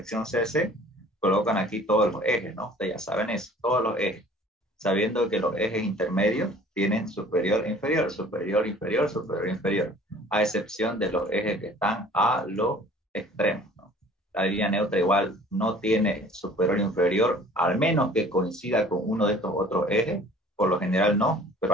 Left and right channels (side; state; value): both; normal; correlation 0.50